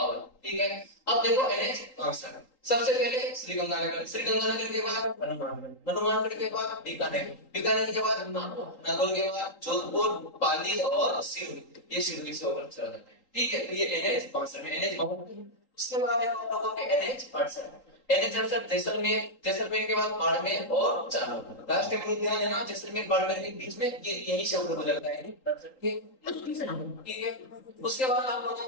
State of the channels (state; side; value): late; right; 3.8 ms